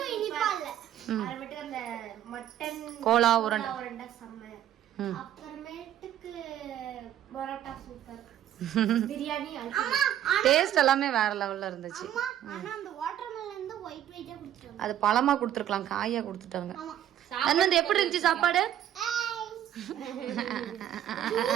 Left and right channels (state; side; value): quieter; left; 11.3 dB